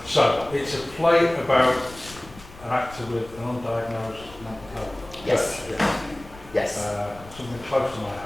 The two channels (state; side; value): noise; left; rumble, 19 dB below the sound